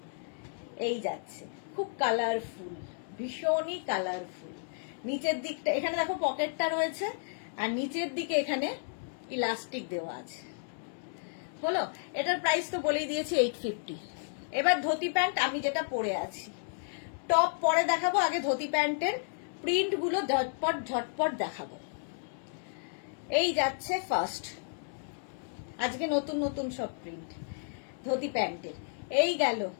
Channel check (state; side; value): silent; right; 56 dB below the other